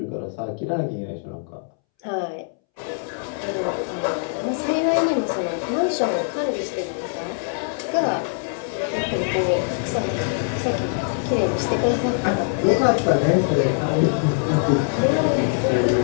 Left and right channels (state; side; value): silent; right; 64 dB below the other